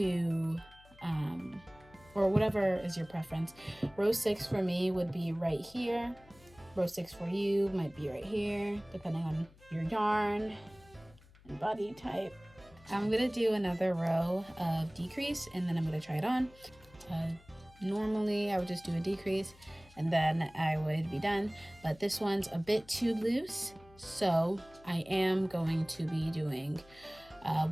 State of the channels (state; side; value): noise; left; hum, 25 dB below the sound